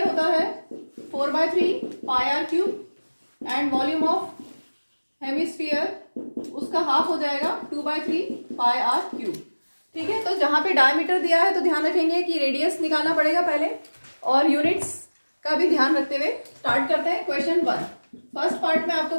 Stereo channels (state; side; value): inverted; both; correlation -1.00